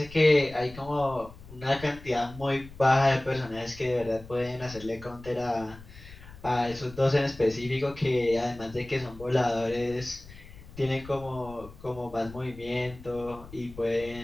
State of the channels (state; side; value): noise; left; rumble, 18 dB below the sound